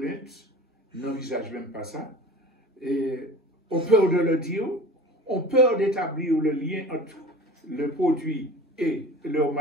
n'envisagent même pas ça, et ont peur de le dire, ont peur d'établir le lien entre le produit et leur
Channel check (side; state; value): both; normal; correlation 0.39